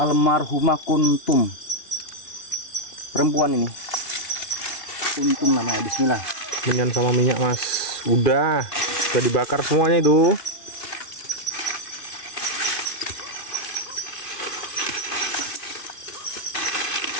Kuntum. Perempuan ini. Kuntum namanya. Bismillah. Minyan sama minyak mas. Udah dibakar semuanya itu.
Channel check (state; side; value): late; right; 2.5 ms